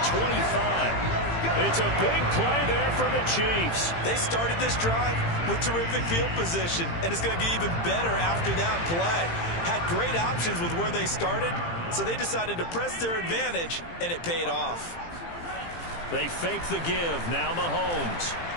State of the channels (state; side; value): late; right; 18 ms